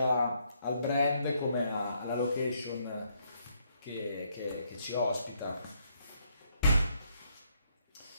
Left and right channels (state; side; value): inverted; both; correlation -0.72